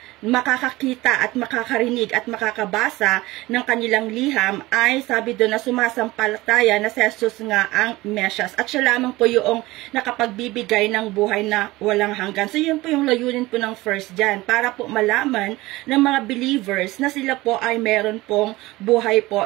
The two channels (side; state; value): left; quieter; 19.5 dB